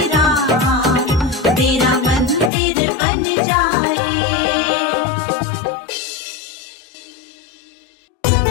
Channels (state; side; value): drops out; right; at 2.5 s